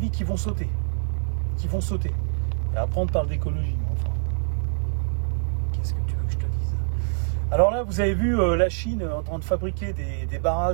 qui vont sauter. Et après, on parle d'écologie. Enfin, qu'est-ce que tu veux que je te dise? Alors là, vous avez vu la Chine en train de fabriquer des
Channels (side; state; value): left; silent; digital silence